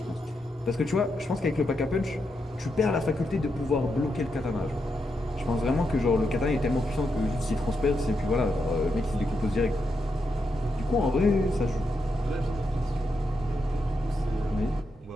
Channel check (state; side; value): normal; both; correlation 0.83